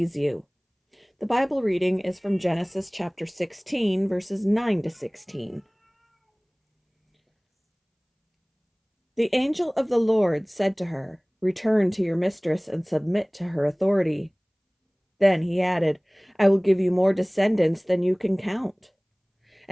You. The Bible reading is from Genesis chapter 16, verses 9 to 16. The angel of the Lord said to her, "Return to your mistress and submit to her authority." Then he added, "I will give you more descendants than you can count."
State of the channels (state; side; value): identical; both; correlation 1.00